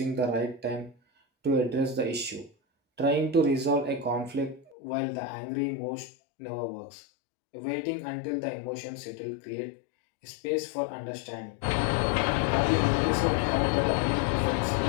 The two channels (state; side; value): drops out; right; at 4.8 s